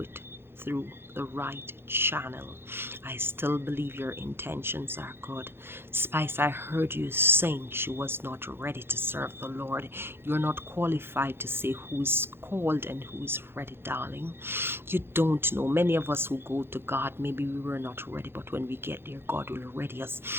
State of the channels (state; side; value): late; left; 0.11 ms